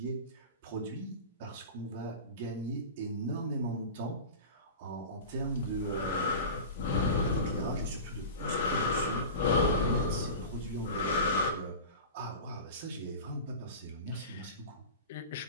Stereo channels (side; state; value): both; inverted; correlation -0.31